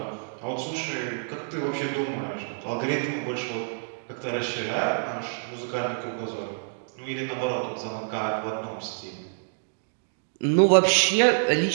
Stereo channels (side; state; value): left; silent; digital silence